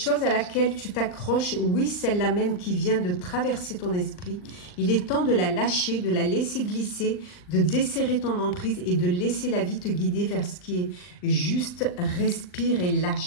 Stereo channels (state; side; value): late; right; 39 ms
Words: à laquelle tu t'accroches, oui, celle-là même qui vient de traverser ton esprit, il est temps de la lâcher, de la laisser glisser, de desserrer ton emprise et de laisser la vie te guider vers ce qui est juste. Respire et